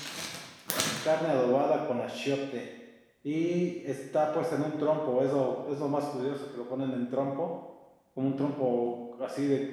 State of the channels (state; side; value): identical; both; correlation 1.00